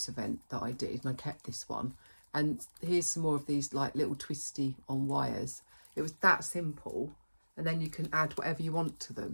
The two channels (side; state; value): both; inverted; correlation -1.00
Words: event that I did, and I kept this one. And here's some more of these like little twisty on wires. It was that simple, and then you can add whatever you want to